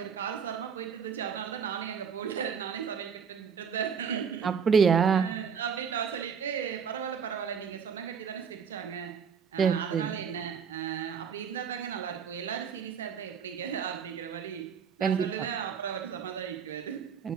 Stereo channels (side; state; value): left; quieter; 6.8 dB